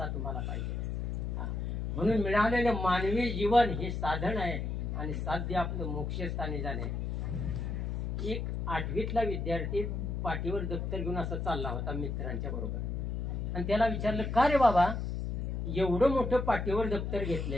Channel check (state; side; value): noise; left; hum, 2 dB below the sound